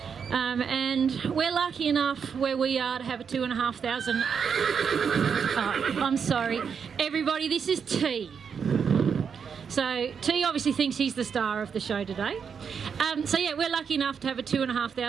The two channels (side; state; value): left; quieter; 6.6 dB